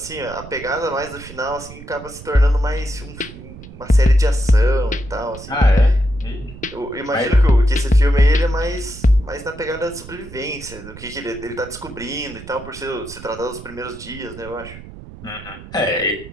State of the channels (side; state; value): right; noise; rumble, 16 dB below the sound